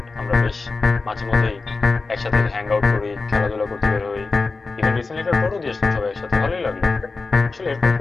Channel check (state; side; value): quieter; right; 4.0 dB